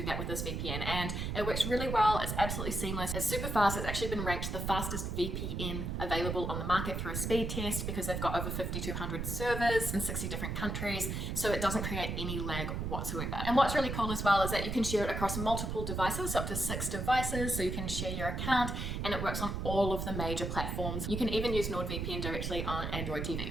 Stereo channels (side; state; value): right; noise; rumble, 3 dB below the sound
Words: that with this VPN. And it works really well. It's absolutely seamless. It's super fast. It's actually been ranked the fastest VPN available on the market through a speed test because they've got over 5,200 servers in 60 different countries. So it doesn't create any lag whatsoever. And what's really cool as well is that you can share it across multiple devices, up to 6 devices, so you can share your account and it works on all of the major platforms. You can even use NordVPN directly on Android